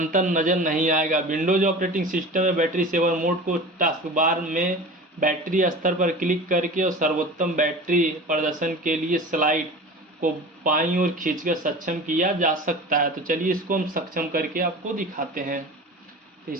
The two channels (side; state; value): both; normal; correlation 0.36